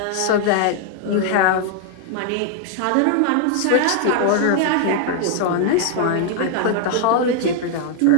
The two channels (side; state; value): both; different; correlation 0.00